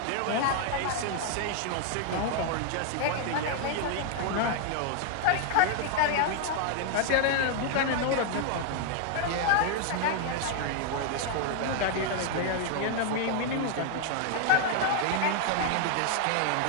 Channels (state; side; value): different; both; correlation 0.00